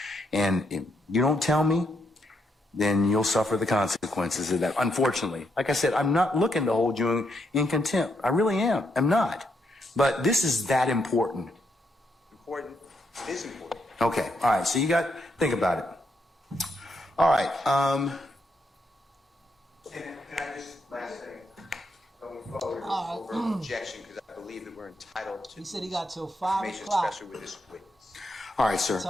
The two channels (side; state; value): both; normal; correlation 0.78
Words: and if you don't tell me, then you'll suffer the consequences of that. Unfortunately, like I said, I'm not looking to hold you in contempt. I really am. I'm not. But this is that important. Important? It is important. Okay. All right. So you got, think about it. All right. Can I just, last thing, going forward, over an objection, because I believe that we're entitled to. He said he got till 5 information, o'clock. especially with this witness. All right, sir.